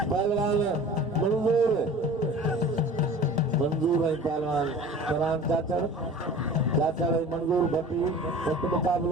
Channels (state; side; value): normal; both; correlation 0.41